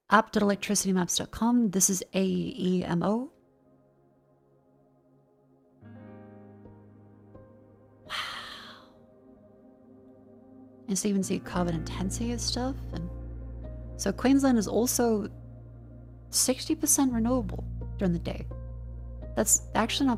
app.electricitymaps.com. This is AEMO. Wow. And so you even see carbon intensity and stuff. And so Queensland is also 60% renewable during the day. That's actually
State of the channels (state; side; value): identical; both; correlation 1.00